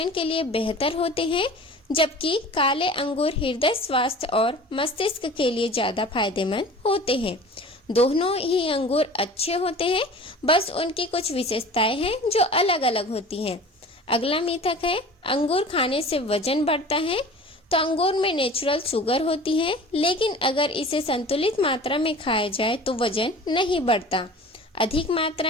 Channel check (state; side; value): normal; both; correlation 0.41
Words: के लिए बेहतर होते हैं, जबकि काले अंगूर हृदय स्वास्थ्य और मस्तिष्क के लिए ज़्यादा फायदेमंद होते हैं। दोनों ही अंगूर अच्छे होते हैं, बस उनकी कुछ विशेषताएं हैं जो अलग अलग होती हैं। अगला मिथक है, अंगूर खाने से वजन बढ़ता है। तो अंगूर में नेचुरल शुगर होती है, लेकिन अगर इसे संतुलित मात्रा में खाया जाए तो वजन नहीं बढ़ता। अधिक